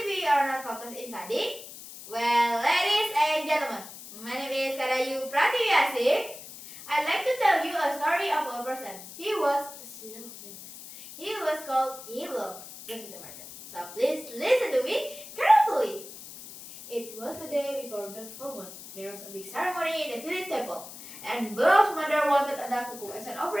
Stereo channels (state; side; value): noise; left; hiss, 14 dB below the sound